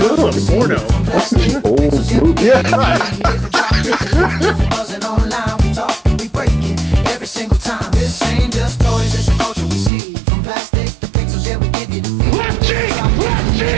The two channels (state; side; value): drops out; left; at 9.9 s